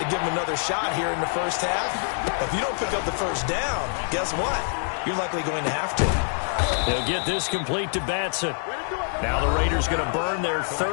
give them another shot here in the 1st half. If you don't pick up the 1st down, guess what? You're likely going to have to. They'll get this complete to Batson. Now the Raiders going to burn their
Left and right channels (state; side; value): silent; right; 61 dB below the other